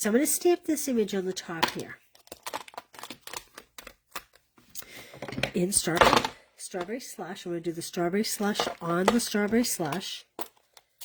I'm going to stamp this image on the top here. In strawberry slush. I'm going to do the strawberry slush on the strawberry slush.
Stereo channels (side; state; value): both; identical; correlation 1.00